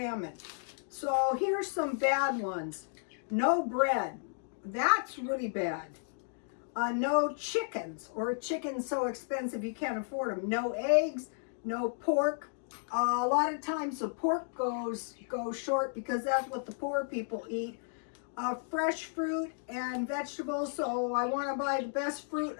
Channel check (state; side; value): silent; right; digital silence